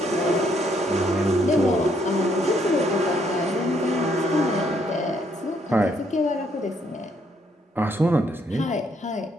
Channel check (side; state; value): both; normal; correlation 0.71